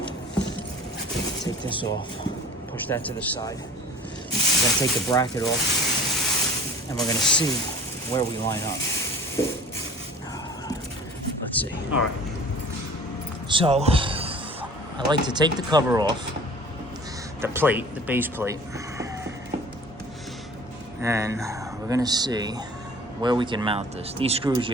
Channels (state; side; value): normal; both; correlation 0.45